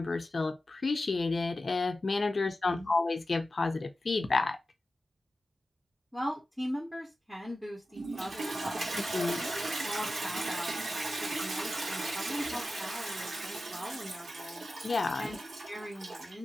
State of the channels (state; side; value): normal; both; correlation 0.93